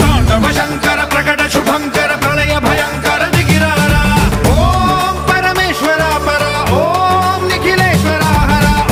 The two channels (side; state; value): both; identical; correlation 1.00